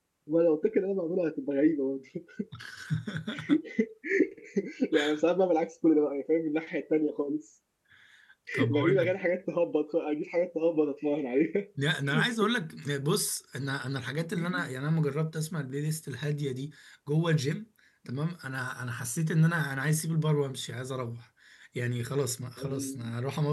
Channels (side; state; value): both; identical; correlation 1.00